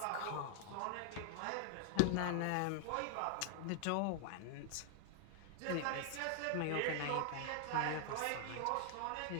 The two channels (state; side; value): different; both; correlation 0.00